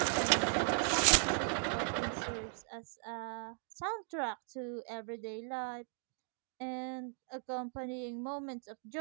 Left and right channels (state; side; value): silent; left; 53 dB below the other